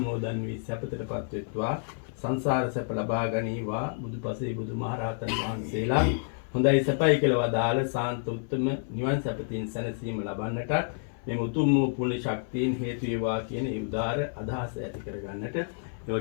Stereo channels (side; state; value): right; silent; 56 dB below the other